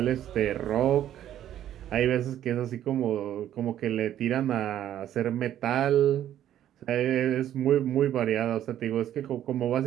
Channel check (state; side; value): quieter; left; 11.4 dB